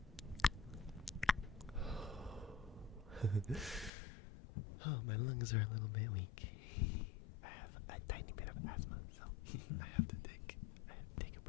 Oh, my lungs are a little bit weak. I have a tiny bit of asthma, so I have to take a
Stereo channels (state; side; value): drops out; right; at 3.9 s